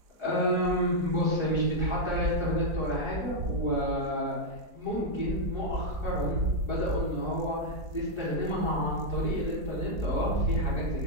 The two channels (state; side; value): late; left; 5.0 ms